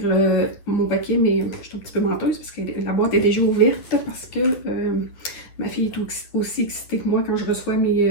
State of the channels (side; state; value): right; late; 10 ms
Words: mon paquet, mais je suis un petit peu menteuse parce que la boîte est déjà ouverte parce que ma fille est aussi excitée que moi quand je reçois